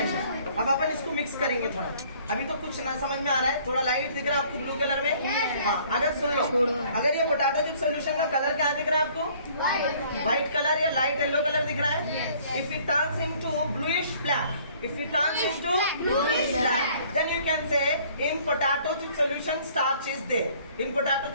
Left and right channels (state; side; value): inverted; both; correlation -0.57